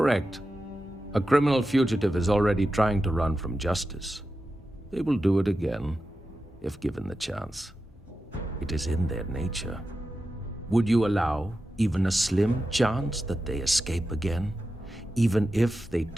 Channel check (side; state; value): both; normal; correlation 0.91